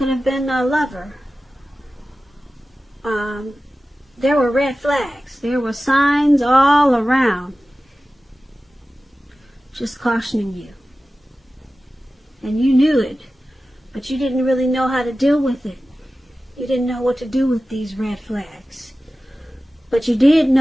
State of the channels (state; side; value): normal; both; correlation 0.95